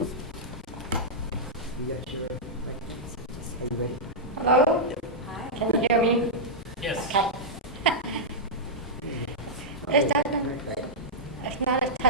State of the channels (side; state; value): both; normal; correlation -0.08